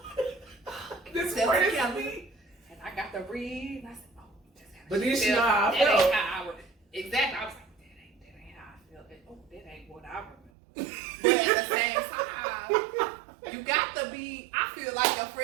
This That's part is Kelly. me. And I got to read, and I said, oh, that's how But she then she felt. know how I That felt. ain't how I would. Exactly. I was like, that ain't how I felt. Oh, that ain't what I remember. But at the same time, you got to be, I feel like your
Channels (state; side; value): drops out; left; at 10.5 s